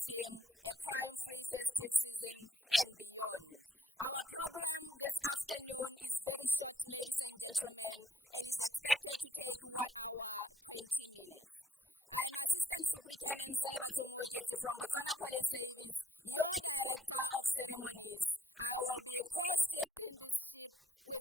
A Crime-Free Festive Season and Beyond. Our program this afternoon is very short, ladies and gentlemen, and is expected to take 1 hour, 20 minutes. I'm Assistant Superintendent Selebatso Moeketsi from Botswana Police Service, your Director of Ceremonies. I will be co-steering this ship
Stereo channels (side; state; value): both; normal; correlation 0.68